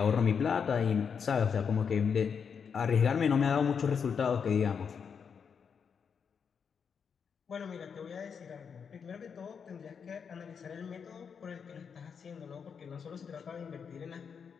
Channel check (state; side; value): quieter; right; 6.6 dB